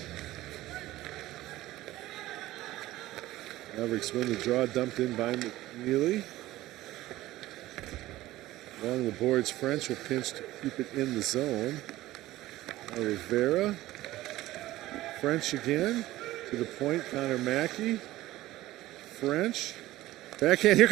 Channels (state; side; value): quieter; left; 16.3 dB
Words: Mavericks win the draw, dumped in by McNeely. Along the boards, French will pinch to keep it in the zone. Now Rivera. French again. To the point, Connor Mackey. French. Backhand, here